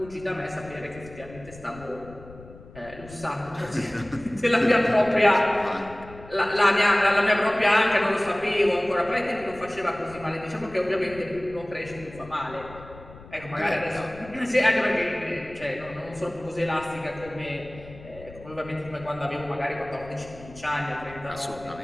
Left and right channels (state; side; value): noise; left; rumble, 18 dB below the sound